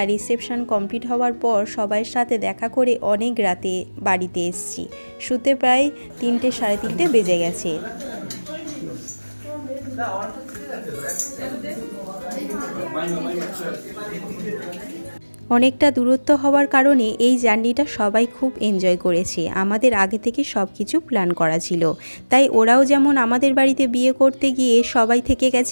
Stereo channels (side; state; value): both; inverted; correlation -1.00